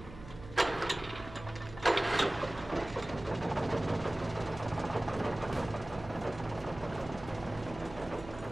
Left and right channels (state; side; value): noise; right; hum, 15 dB below the sound